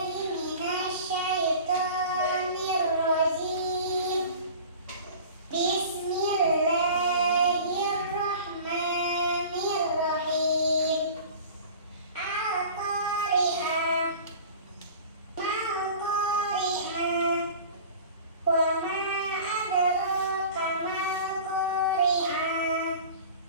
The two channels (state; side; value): inverted; both; correlation -0.41